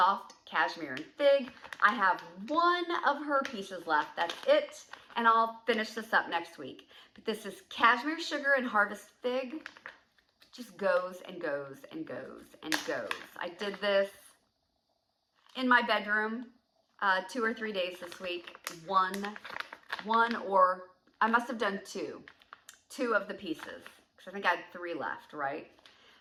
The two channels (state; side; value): identical; both; correlation 1.00